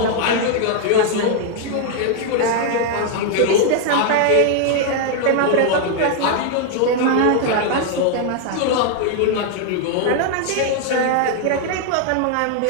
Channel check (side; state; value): both; different; correlation 0.00